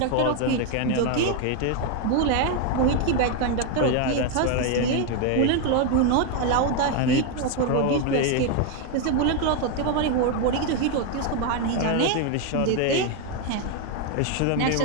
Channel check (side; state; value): both; different; correlation 0.01